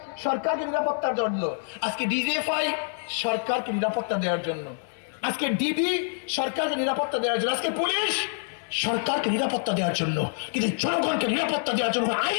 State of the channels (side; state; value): right; silent; 61 dB below the other